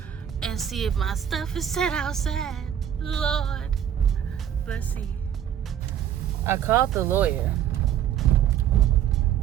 and see if my stuff is set outside. Lord, let's see. I called the lawyer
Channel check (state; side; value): quieter; left; 9.8 dB